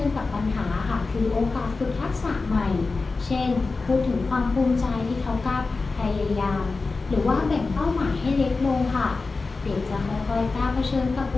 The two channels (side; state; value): right; quieter; 3.9 dB